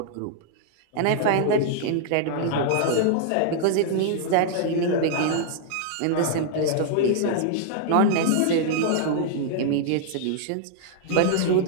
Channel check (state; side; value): different; both; correlation -0.01